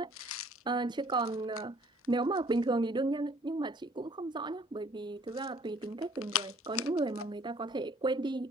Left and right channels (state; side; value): normal; both; correlation 0.58